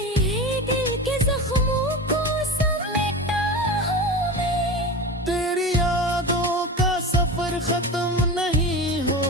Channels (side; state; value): both; normal; correlation 0.27